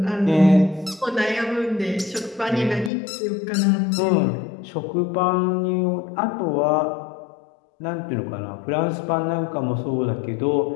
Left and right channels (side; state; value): right; drops out; at 2.9 s